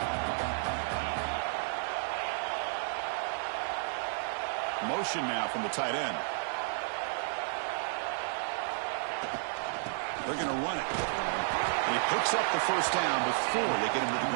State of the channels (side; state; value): left; silent; digital silence